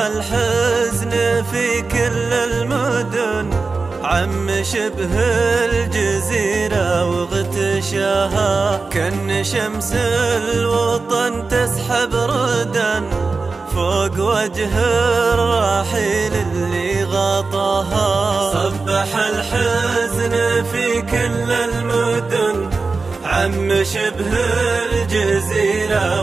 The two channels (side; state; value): left; quieter; 4.1 dB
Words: في كل المدن، عم شبه الجزيرة واغتشاها، كأن شمس الوطن تسحب ردا فوق وجه الرحيل اللي غطاها. صبح الحزن في كل المدن، عم شبه الجزيرة